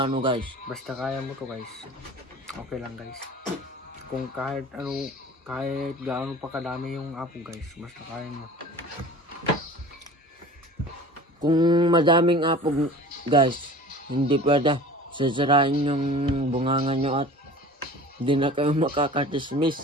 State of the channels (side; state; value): both; normal; correlation 0.41